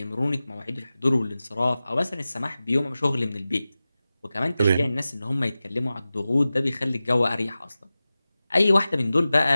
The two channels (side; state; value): both; inverted; correlation -0.96